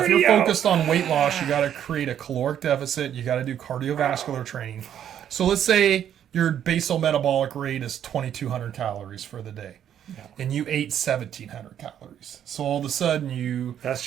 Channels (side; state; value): left; quieter; 9.9 dB